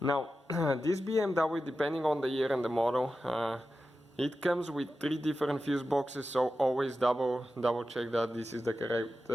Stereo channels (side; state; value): both; normal; correlation 0.92